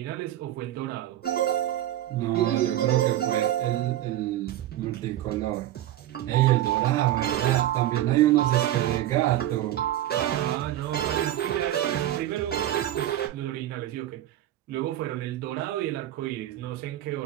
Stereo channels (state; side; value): quieter; left; 13.2 dB